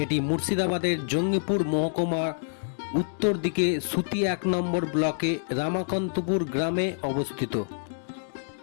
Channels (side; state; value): right; silent; 60 dB below the other